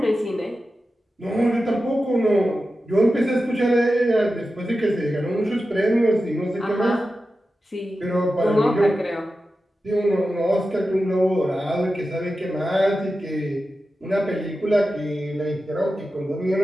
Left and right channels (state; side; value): normal; both; correlation 0.92